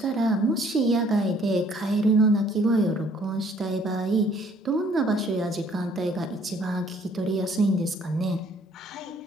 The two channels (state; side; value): normal; both; correlation 0.61